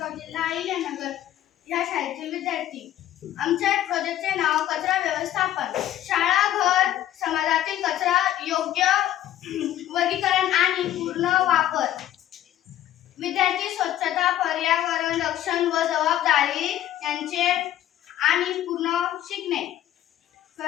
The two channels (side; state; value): right; quieter; 12.5 dB